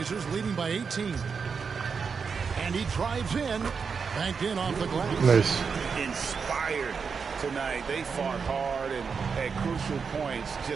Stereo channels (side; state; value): left; quieter; 5.7 dB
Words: leading by 18. And he drives in. Banked in off the glass. Nice. Inspired tonight. They fought hard and at crucial points